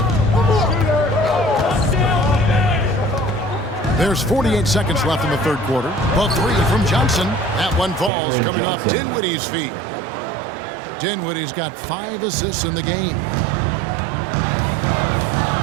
There's 48 seconds left in the third quarter. A 3 from Johnson. That one falls coming off Dinwiddie's feet. Dinwiddie's got 5 assists in the game.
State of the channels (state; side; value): drops out; left; at 8.1 s